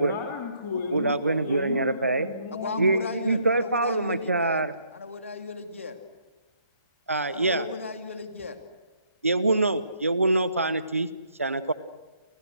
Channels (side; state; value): both; inverted; correlation -0.69